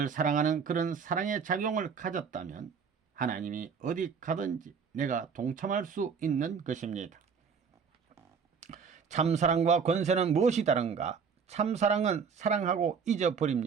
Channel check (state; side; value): quieter; left; 6.2 dB